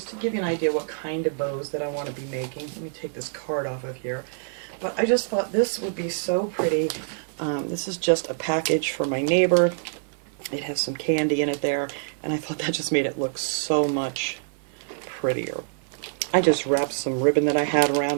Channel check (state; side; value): silent; left; 58 dB below the other